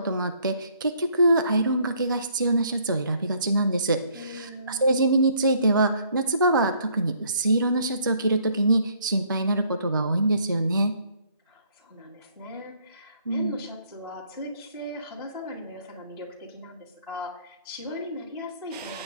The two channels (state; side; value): inverted; both; correlation -0.64